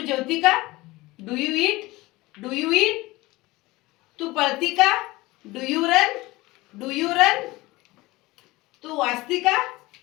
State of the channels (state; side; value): quieter; right; 20.4 dB